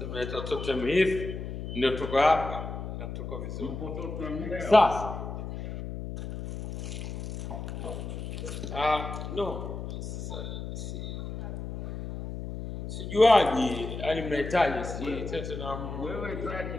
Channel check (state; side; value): noise; left; hum, 7 dB below the sound